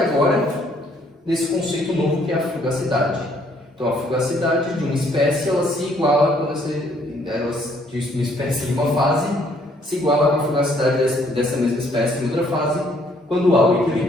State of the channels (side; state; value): both; normal; correlation 0.65